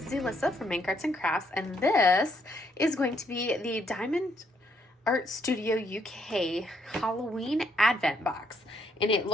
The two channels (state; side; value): normal; both; correlation 0.72